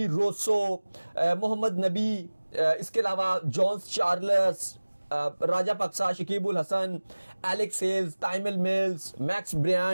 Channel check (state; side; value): inverted; both; correlation -1.00